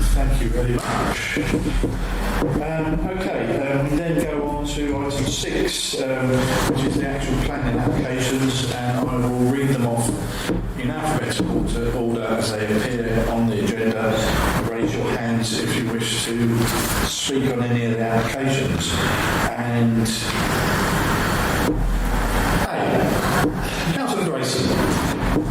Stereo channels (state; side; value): identical; both; correlation 1.00